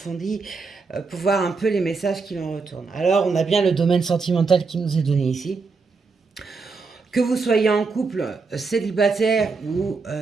pour voir un peu les messages qui en retournent. Alors on a bien le domaine sentimental qui nous est donné ici. Que vous soyez en couple, célibataire ou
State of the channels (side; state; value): left; quieter; 4.5 dB